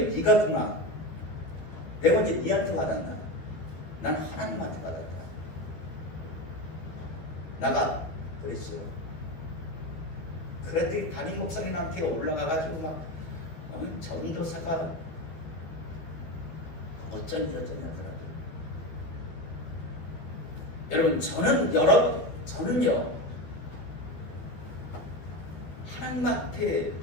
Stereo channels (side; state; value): right; late; 13 ms